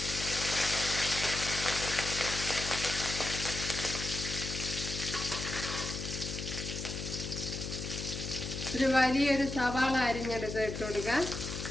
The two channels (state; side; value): noise; left; hum, 6 dB below the sound